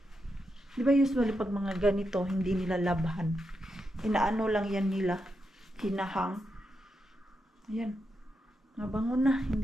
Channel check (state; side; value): normal; both; correlation 0.85